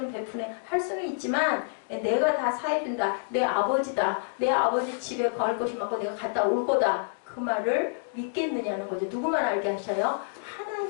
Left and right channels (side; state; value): right; silent; digital silence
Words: 베푸네 할 수는 있지만 내가 다 사해준다, 내 아버지다, 내 아버지 집에 갈 것이 많고 내가 갔다 올 거다, 그 말을 믿겠느냐는 거죠. 누구만 알게 하셔요?